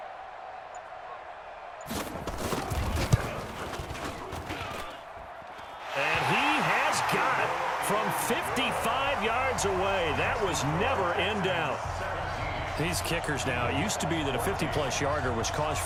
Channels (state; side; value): identical; both; correlation 1.00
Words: From 55 yards away. That was never in doubt. These kickers now, it used to be that a 50-plus yarder was cause